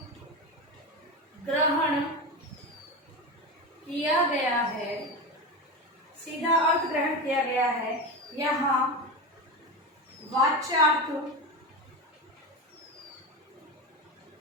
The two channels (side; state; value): both; normal; correlation 0.21